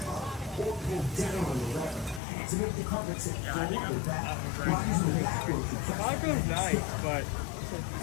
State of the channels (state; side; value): drops out; right; at 2.2 s